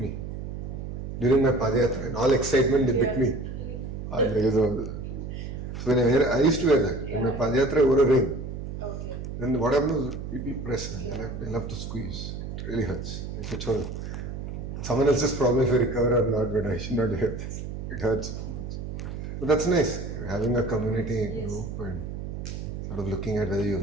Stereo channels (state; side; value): noise; right; hum, 7 dB below the sound